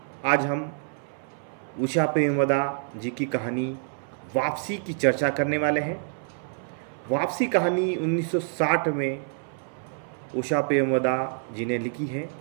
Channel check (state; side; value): silent; left; 60 dB below the other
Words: आज हम उषा प्रेमवदा जी की कहानी वापसी की चर्चा करने वाले हैं। वापसी कहानी 1960 में उषा प्रेमवदा जी ने लिखी है।